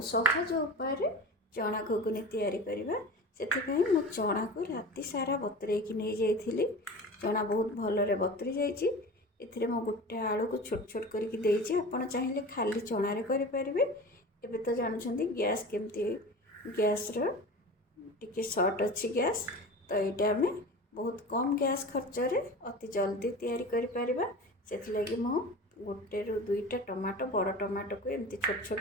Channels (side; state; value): both; normal; correlation 0.34